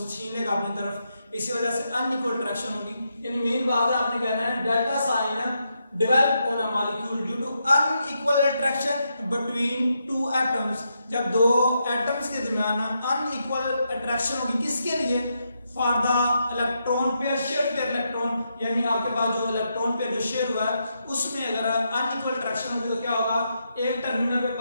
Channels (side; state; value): both; inverted; correlation -0.82